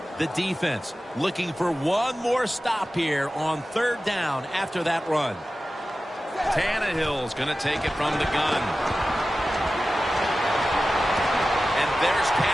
The defense looking for one more stop here on third down after that run. Tannehill's going to take it from the gun. There's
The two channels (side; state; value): both; normal; correlation 0.95